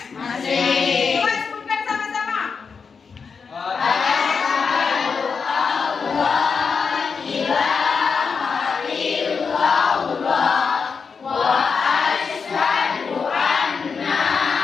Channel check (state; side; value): quieter; right; 5.5 dB